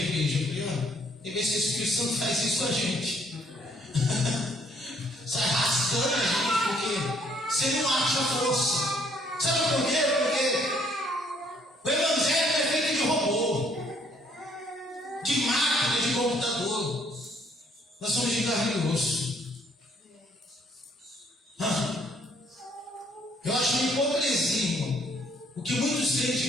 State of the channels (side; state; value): both; normal; correlation 0.65